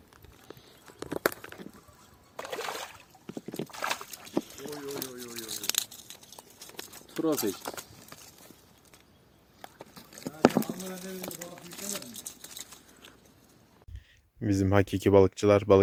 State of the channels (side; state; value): both; identical; correlation 1.00